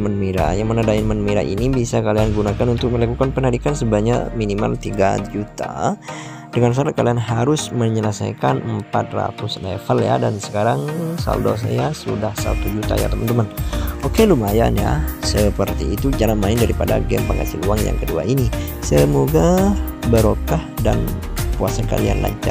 merah, yang mana diamond merah ini bisa kalian gunakan untuk melakukan penarikan sebanyak minimal 3 juta. Dengan syarat kalian harus menyelesaikan 400 level ya. Dan sekarang saldo saya sudah 1 juta ya teman-teman. Oke, lumayan ya. Seperti itu cara main daripada game penghasil uang yang kedua ini. Semoga barokah dan puasa kalian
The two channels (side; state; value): both; identical; correlation 1.00